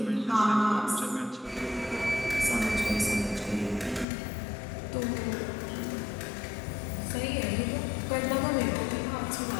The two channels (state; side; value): drops out; right; at 4.0 s